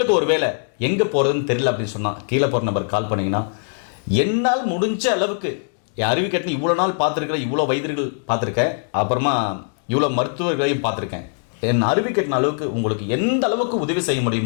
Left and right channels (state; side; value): silent; right; digital silence